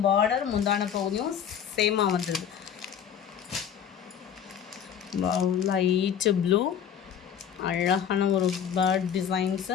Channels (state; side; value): quieter; right; 8.6 dB